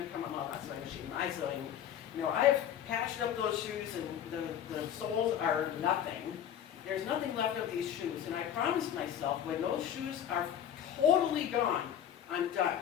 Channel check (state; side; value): quieter; right; 9.8 dB